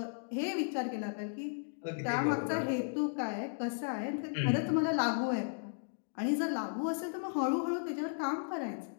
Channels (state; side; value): silent; right; digital silence